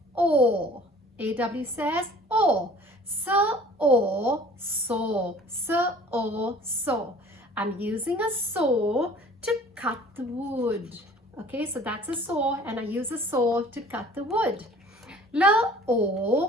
or. AW says or. So or saw. So or saw. I'm using a saw to cut the wood. Okay, so that's a saw and I use a saw to cut the wood. L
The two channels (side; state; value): both; normal; correlation 0.49